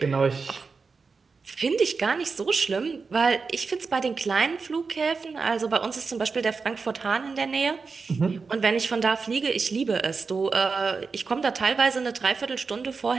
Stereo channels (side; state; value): left; quieter; 4.7 dB